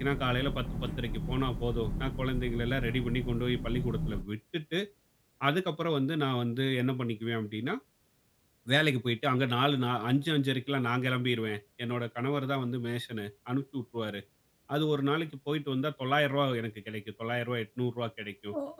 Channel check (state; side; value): identical; both; correlation 1.00